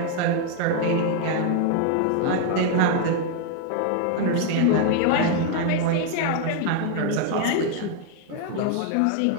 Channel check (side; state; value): both; different; correlation 0.01